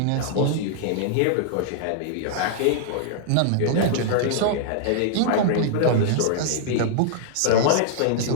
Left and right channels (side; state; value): both; different; correlation -0.01